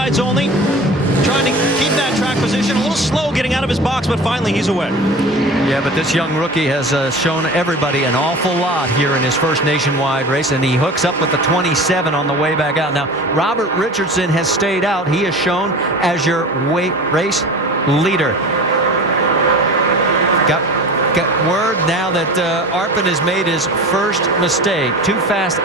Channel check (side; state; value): both; normal; correlation 0.36